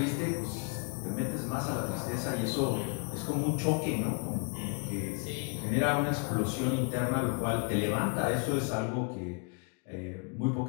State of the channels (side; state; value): right; quieter; 35.6 dB